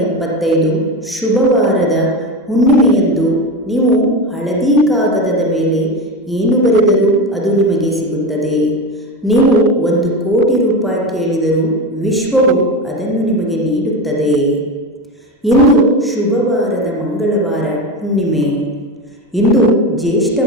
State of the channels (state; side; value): normal; both; correlation 0.21